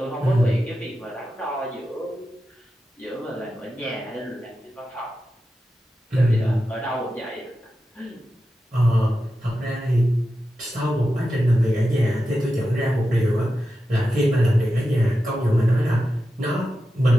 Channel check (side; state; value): both; normal; correlation 0.91